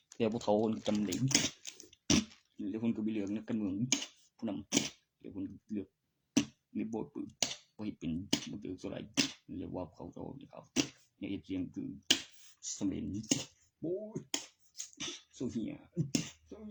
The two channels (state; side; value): identical; both; correlation 1.00